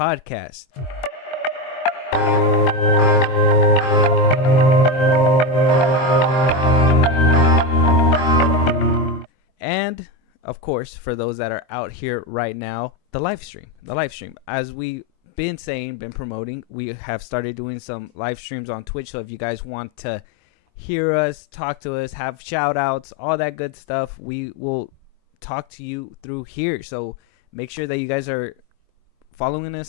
And, of course, for those that are out here right now, the live stream. As we've been promoting, we have started doing some live streams on Twitch. So if you guys want to hear us, talk to us, have shout outs, all that good stuff, we will talk to you through here. So make sure that you guys are following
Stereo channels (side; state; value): right; late; 23 ms